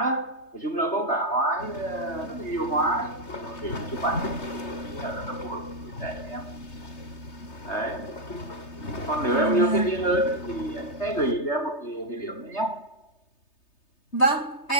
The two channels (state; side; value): late; right; 3.3 ms